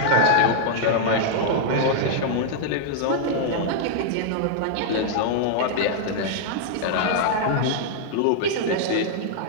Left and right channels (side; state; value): both; different; correlation -0.01